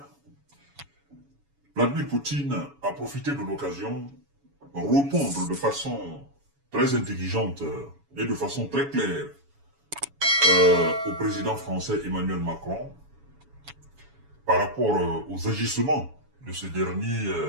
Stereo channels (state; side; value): late; left; 7.1 ms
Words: Vladimir Poutine a profité de l'occasion pour répondre de façon très intelligente et de façon très claire au président français Emmanuel Macron par rapport aux agissements de ce dernier